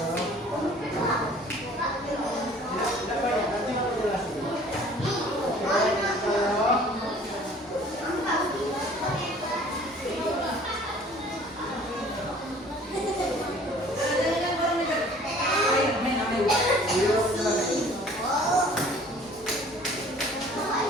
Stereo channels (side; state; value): both; normal; correlation 0.51